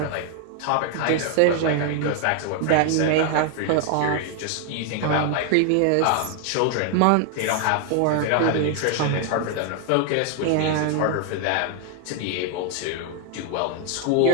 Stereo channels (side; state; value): both; different; correlation 0.00